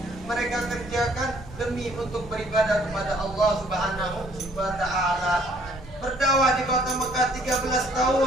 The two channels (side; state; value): left; noise; hum, 19 dB below the sound